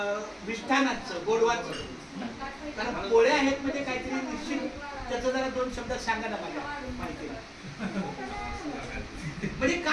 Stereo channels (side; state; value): both; identical; correlation 1.00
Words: मिष्ठानाचं गोडवाचं, कारण पोळ्या आहेत म्हणजे काहीतरी निश्चित त्याचं जरा 2 शब्दात सांगा ना माझ्या माहिती. म्हणजे